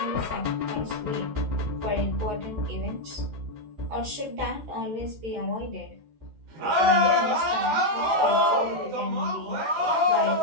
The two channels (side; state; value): left; late; 14 ms